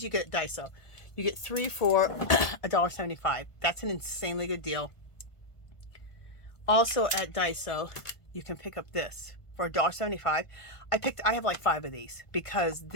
you get at Daiso. You get 3 for $1.75. That's an insanely good deal. Also at Daiso, you can pick up this for $1.75. I have like 5 of these because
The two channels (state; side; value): late; right; 1.5 ms